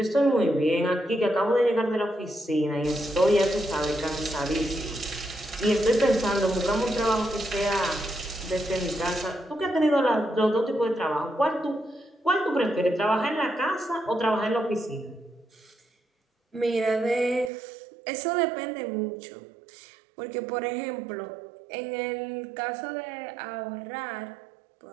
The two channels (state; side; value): drops out; left; at 17.5 s